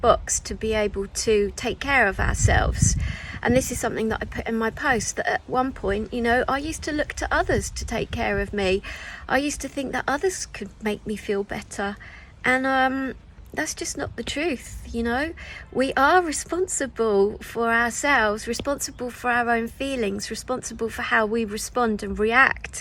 to be able to take care of ourselves. And this is something that I put in my post, that at one point, you know, I used to look to others to take care of me. I used to think that others could make me feel better. And that's just not the truth, you know. We are responsible for ourselves, responsible for our own feelings, responsible for how we respond and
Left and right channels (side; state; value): both; identical; correlation 1.00